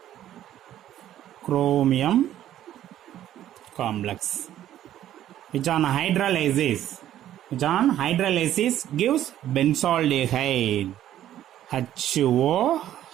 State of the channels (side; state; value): left; quieter; 12.1 dB